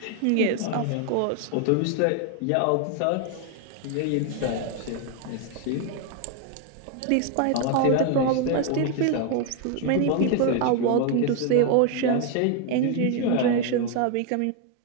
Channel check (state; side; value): different; both; correlation 0.01